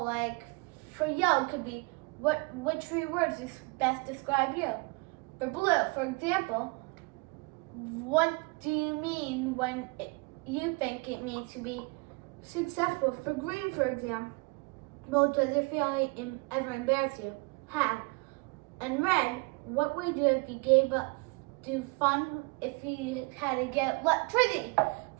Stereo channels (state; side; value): quieter; left; 28.9 dB